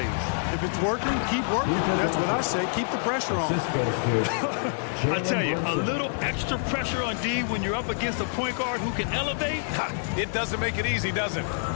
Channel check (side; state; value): right; silent; 60 dB below the other